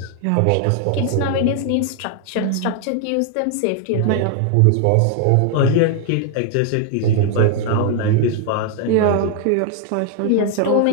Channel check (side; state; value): both; different; correlation 0.00